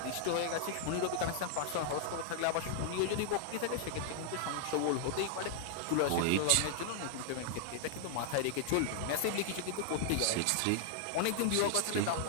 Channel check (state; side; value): different; both; correlation -0.01